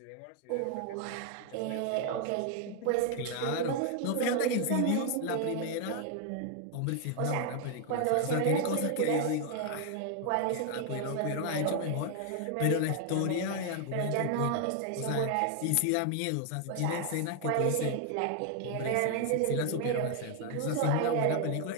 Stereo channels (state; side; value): different; both; correlation 0.00